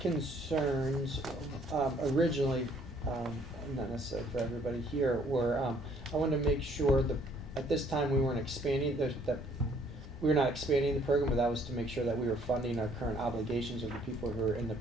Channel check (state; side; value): normal; both; correlation 0.62